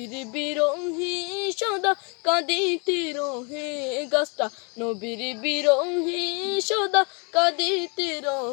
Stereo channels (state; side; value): quieter; right; 33.3 dB